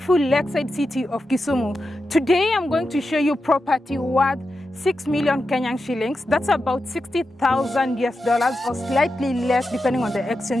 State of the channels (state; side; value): normal; both; correlation 0.89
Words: lakeside city of Kisumu. Today I'm going to show you property worth 6 million Kenyan shillings. That's about 60,000 US dollars or slightly less depending on the